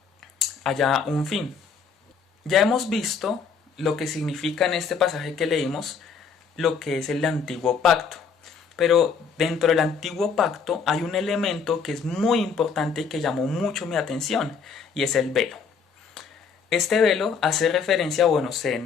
haya un fin. Ya hemos visto lo que significa en este pasaje que leímos, lo que es el antiguo pacto. Pero dentro del antiguo pacto hay un elemento que es muy importante y que llamó mucho mi atención, y es el velo. Este velo hace referencia,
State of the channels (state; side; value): quieter; right; 5.8 dB